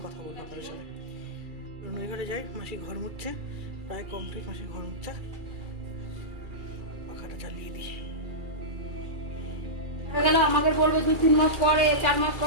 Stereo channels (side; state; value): left; late; 2.3 ms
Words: কথা বলবো আপনাদের সাথে। নই ঘরে যাই, মাসি ঘর মুছছে, প্রায় কমপ্লিট মাসি ঘর মুছছে। পাখাটা চালিয়ে দিই। গেলে আমাকে বলবে 2-3 মাস পরে, 4 মাস